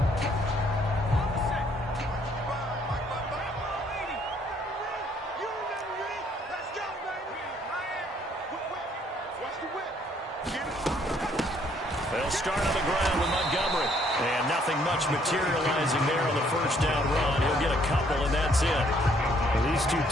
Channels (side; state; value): both; normal; correlation 0.66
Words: They'll start on the ground with Montgomery. And nothing much materializing there on the first down run. He'll get a couple, and that's it. Well, these two